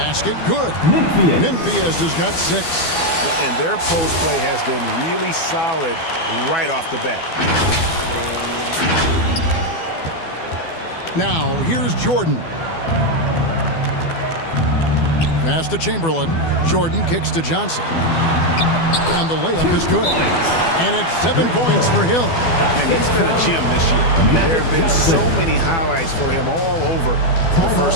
good. Memphis has got 6. And their post play has been really solid right off the bat. Now, here's Jordan. Pass to Chamberlain. Jordan kicks to Johnson. And the layup is good. And it's 7 points for Hill. And he's been a gem this year. I mean, there have been so many highlights for him all over the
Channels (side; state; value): right; late; 12 ms